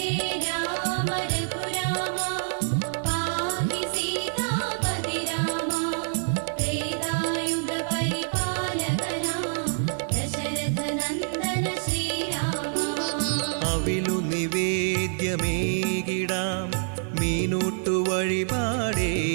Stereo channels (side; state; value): left; silent; digital silence